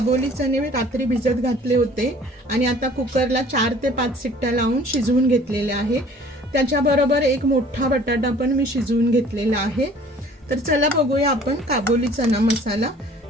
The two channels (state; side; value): normal; both; correlation 0.52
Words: चणे रात्री भिजत घातले होते आणि आता कुकरला 4 ते 5 शिट्ट्या लावून शिजवून घेतलेले आहे। त्याच्याबरोबर एक मोठा बटाटा पण मी शिजवून घेतलेला आहे। तर चला बघूया आपण काबोली चना मसाला।